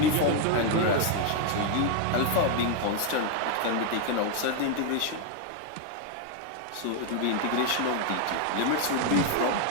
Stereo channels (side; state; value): both; different; correlation 0.01